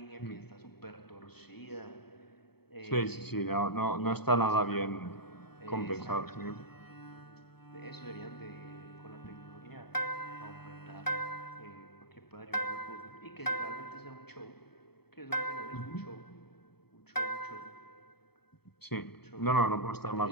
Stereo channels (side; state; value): right; late; 0.97 ms